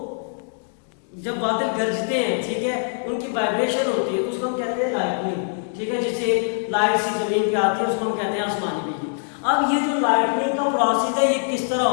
जब बादल गरजते हैं, ठीक है, उनकी वाइब्रेशन होती है तो उसको हम कहते हैं लाइटनिंग, ठीक है, जिससे लाइट सी जमीन पे आती है उसको हम कहते हैं आसमानी बिजली। अब ये जो लाइटनिंग का प्रोसेस है ये किस तरह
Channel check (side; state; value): right; silent; digital silence